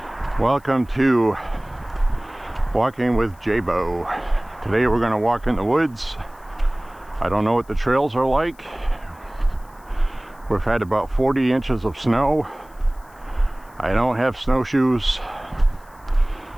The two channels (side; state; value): left; noise; hiss, 29 dB below the sound